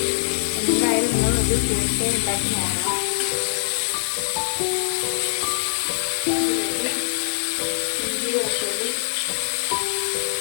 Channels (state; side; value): silent; right; digital silence